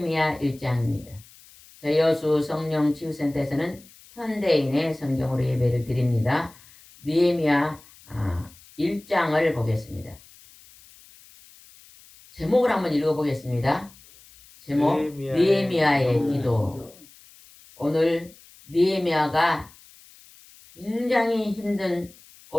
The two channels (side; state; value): left; noise; hiss, 24 dB below the sound